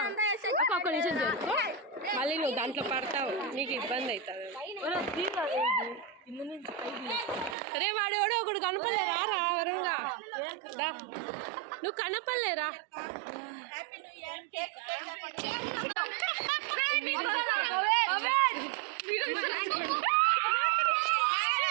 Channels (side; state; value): left; drops out; at 7.6 s